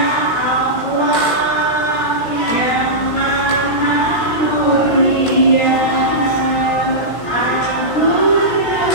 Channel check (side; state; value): right; late; 17 ms